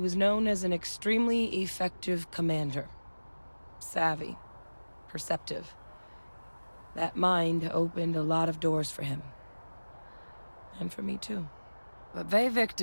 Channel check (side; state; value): both; inverted; correlation -1.00